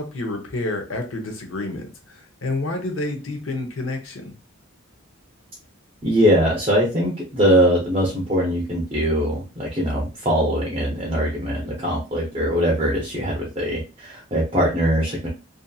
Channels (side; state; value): both; normal; correlation 0.41